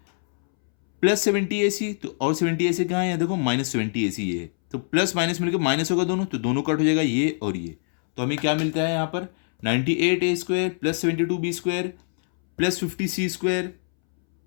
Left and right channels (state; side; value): silent; right; 63 dB below the other